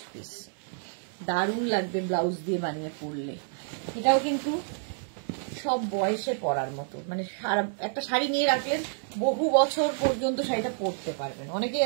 পিস, দারুণ লাগবে ব্লাউজ দিয়ে বানিয়ে পরলে। এটাও কিন্তু সব বয়সে পরার মতো, মানে একটা শাড়ি নিয়ে রাখলেন বহু বছর পর্যন্ত শাড়িটা পরতে পারবেন। অনেকেই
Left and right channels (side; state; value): left; silent; digital silence